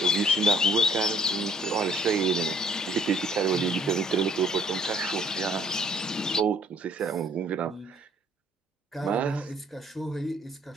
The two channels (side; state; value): both; normal; correlation 0.61